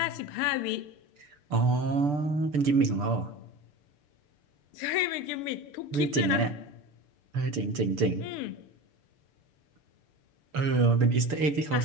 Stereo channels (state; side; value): late; left; 6.8 ms